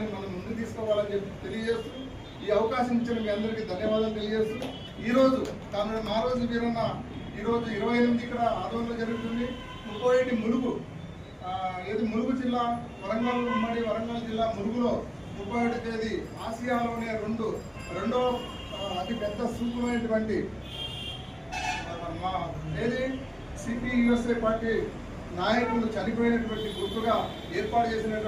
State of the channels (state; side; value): identical; both; correlation 1.00